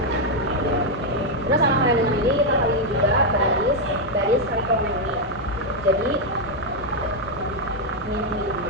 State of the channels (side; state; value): both; normal; correlation 0.01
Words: Terus sama halnya dengan ini kita kali juga baris kali kolom ini. Jadi min 5